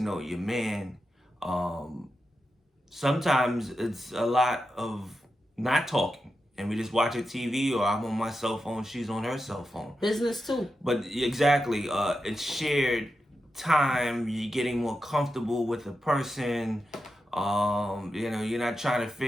your man. Sometimes it's a lot of not talking, and we just watch a TV, or I'm on my cell phone, she's on her cell phone. Business too. But exactly, it's shared time. You're getting more comfortable with the person. You know, you're not trying to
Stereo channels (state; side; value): normal; both; correlation 0.89